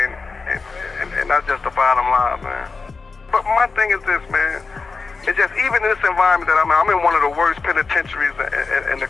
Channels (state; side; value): quieter; right; 4.4 dB